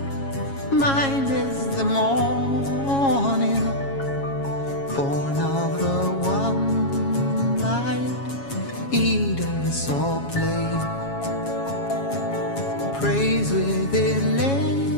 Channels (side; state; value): right; late; 7.3 ms